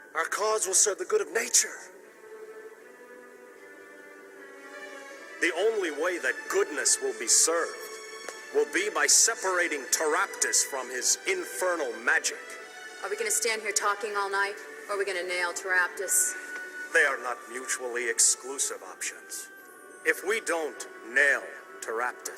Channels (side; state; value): both; identical; correlation 1.00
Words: Our cause will serve the good of nature. The only way that goodness will be served will be by separating Taraptus from his infernal magic. Are we gonna stand here talking all night, or are we gonna nail Taraptus? They are not mutually exclusive options. If we don't nail